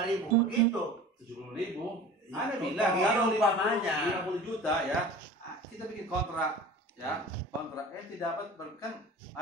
begitu. 70.000. Anda Itu bilang kalau umpamanya. 50 juta ya, kita bikin kontrak ya, kontrak. Ente dapat kan,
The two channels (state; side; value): normal; both; correlation 0.40